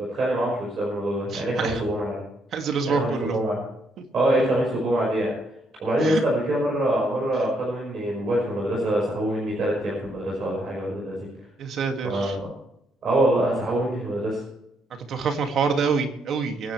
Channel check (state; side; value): normal; both; correlation 0.74